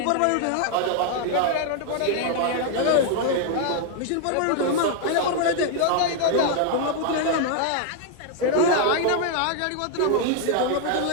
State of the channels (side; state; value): both; different; correlation 0.00